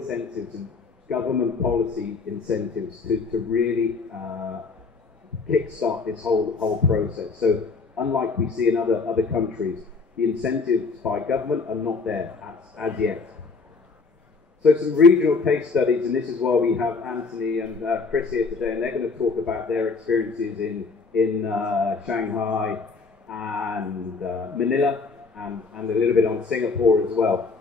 and government policy incentives to really kickstart this whole process. So unlike we see in other countries, the incentives by government are not there as yet. So some regional case studies, and this is why we have Anthony and Chris here today, and they're going to talk about their experiences in Shanghai and Manila, and a little bit on Singapore as well.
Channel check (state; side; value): quieter; right; 4.5 dB